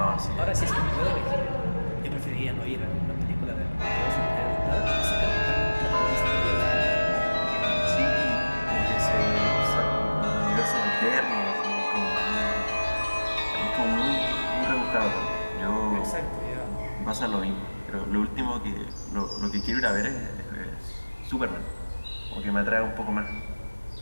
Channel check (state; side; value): inverted; both; correlation -1.00